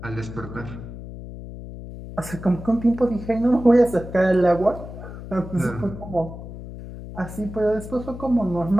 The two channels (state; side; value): noise; left; hum, 12 dB below the sound